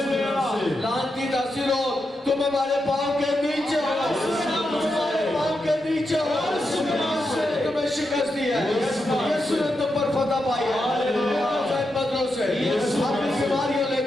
لعنتی تاثیروں تم ہمارے پاؤں کے نیچے ہو تمہارے پاؤں کے نیچے ہو یسوع نے تمہیں شکست دی ہے یسوع نے تم پر فتح پائی ہے بدلوں سے اپنی بیماریوں لے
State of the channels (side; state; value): both; normal; correlation 0.86